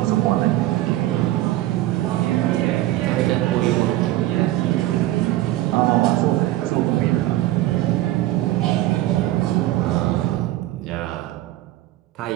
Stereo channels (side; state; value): left; quieter; 15.7 dB